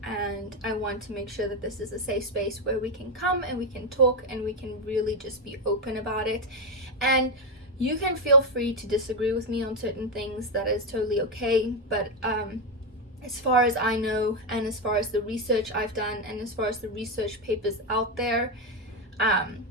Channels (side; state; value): both; normal; correlation 0.07